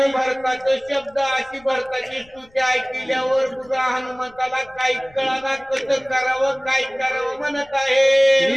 भरताचे शब्द अशी भरताची स्तुती ऐकल्यावर तुझा हनुमंताला काही कळाना कसं करावं काय करावं म्हणत आहे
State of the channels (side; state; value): left; noise; rumble, 28 dB below the sound